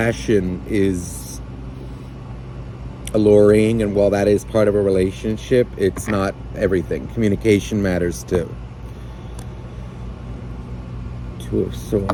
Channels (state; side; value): identical; both; correlation 1.00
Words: is alluring and while that is part of a relationship, it's not everything. Communication matters too. Two of